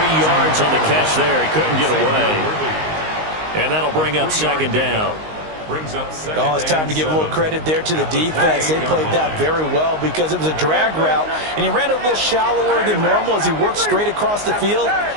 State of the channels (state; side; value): late; left; 19 ms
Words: yards on the catch there. He couldn't get away. And that'll bring up 2nd down. Oh, it's time to give a little credit there to the defense. They played that very well because it was a drag route, and he ran a little shallower than normal as he worked straight across the field.